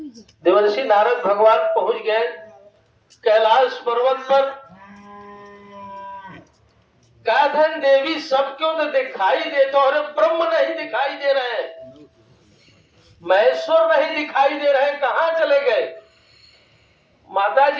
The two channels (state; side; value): identical; both; correlation 1.00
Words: देवर्षि नारद भगवान पहुंच गए कैलाश पर्वत पर। काधन देवी सब क्यों तो दिखाई देते, और ब्रह्म नहीं दिखाई दे रहे हैं, महेश्वर नहीं दिखाई दे रहे हैं, कहां चले गए? माता